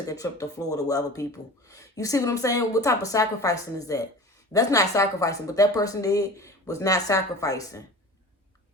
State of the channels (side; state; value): both; normal; correlation 0.37